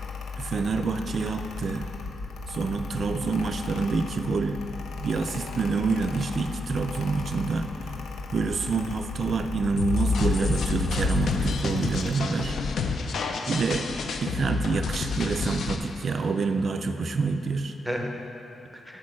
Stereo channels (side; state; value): both; normal; correlation 0.81